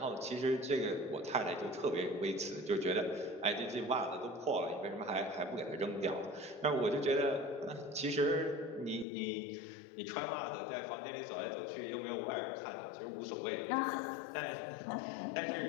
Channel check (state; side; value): drops out; right; at 9.1 s